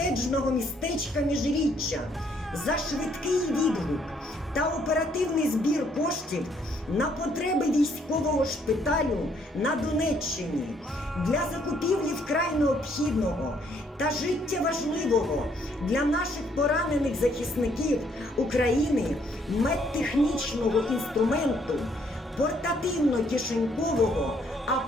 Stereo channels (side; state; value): both; normal; correlation 0.68